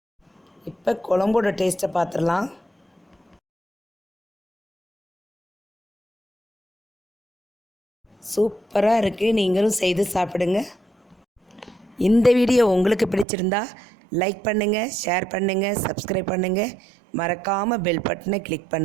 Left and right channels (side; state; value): left; drops out; at 13.2 s